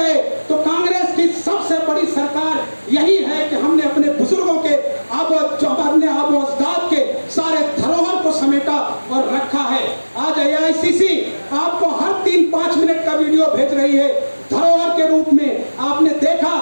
तो कांग्रेस की सबसे बड़ी सरकार यही है कि हमने अपने बुजुर्गों के अपने आबो अजदाद के सारे धरोहर को समेटा और रखा है। आज AICC आपको हर 3-5 मिनट का वीडियो भेज रही है धरोहर के रूप में। आपने देखा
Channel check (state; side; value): inverted; both; correlation -1.00